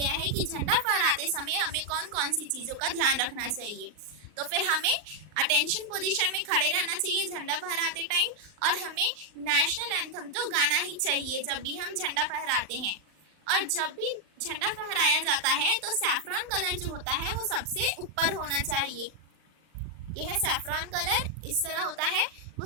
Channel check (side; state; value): left; late; 39 ms